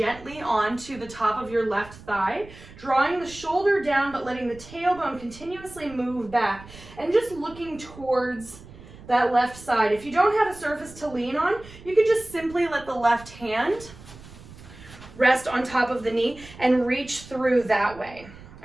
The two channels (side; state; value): right; noise; rumble, 19 dB below the sound